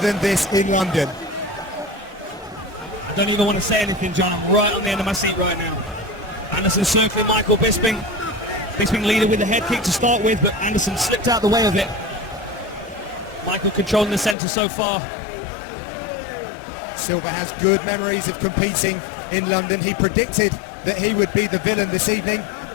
this in London. I don't even want to say anything, John. I'm right on the end of my seat right now. Anderson circling Michael Bisping. Bisping leading with the head kick to start with, but Anderson slipped out the way of it. Michael controlling the centre so far. Silva has good memories of competing in London. He predicted that he would be the villain this evening,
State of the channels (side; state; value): right; drops out; at 14.4 s